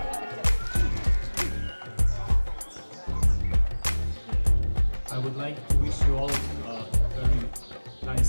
would like to wish you all a very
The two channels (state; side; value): inverted; both; correlation -1.00